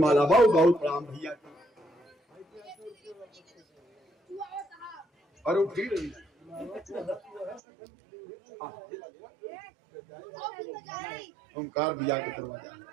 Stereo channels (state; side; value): drops out; left; at 7.6 s